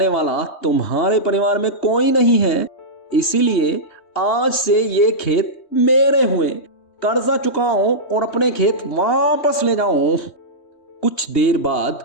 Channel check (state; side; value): late; right; 2.8 ms